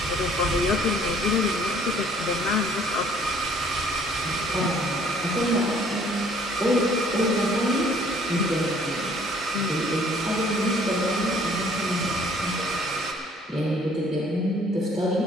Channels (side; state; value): both; normal; correlation 0.58